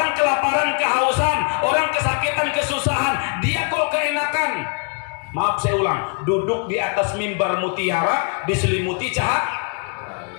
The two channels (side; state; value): right; quieter; 37.9 dB